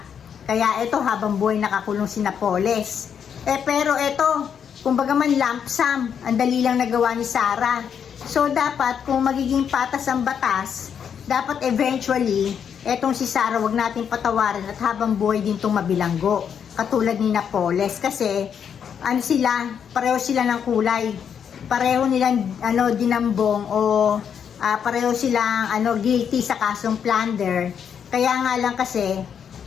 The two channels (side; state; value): right; quieter; 7.8 dB